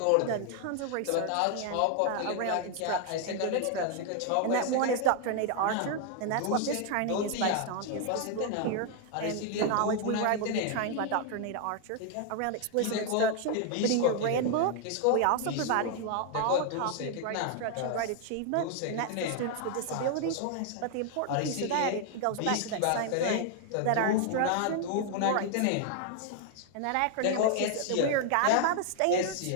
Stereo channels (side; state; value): both; different; correlation 0.00